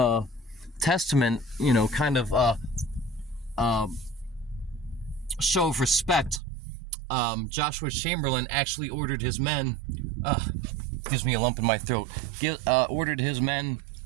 testament, kind of show of respect. Joshua Chamberlain actually ordered his men, gives me a lump in my throat, ordered his men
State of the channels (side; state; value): left; drops out; at 6.4 s